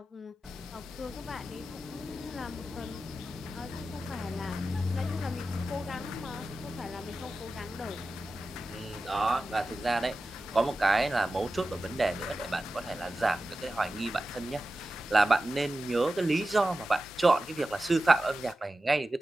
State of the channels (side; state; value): both; normal; correlation 0.94